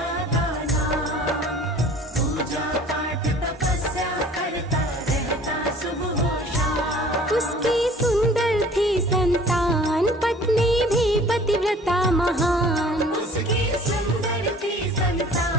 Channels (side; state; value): both; normal; correlation 0.49